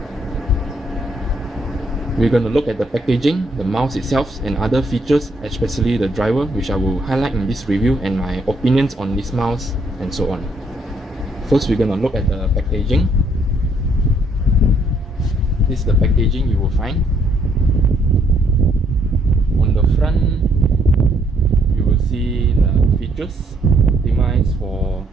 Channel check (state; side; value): normal; both; correlation 0.69